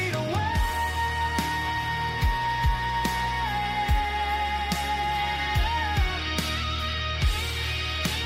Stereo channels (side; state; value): both; identical; correlation 1.00